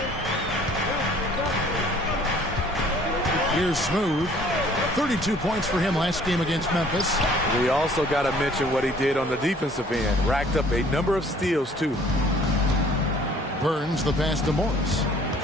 Here's Smooth. 32 points for him last game against Memphis. We also got to mention what he did on the defensive end. Racked up a number of steals, too. Burns the pass to Morris.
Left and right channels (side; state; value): both; normal; correlation 0.56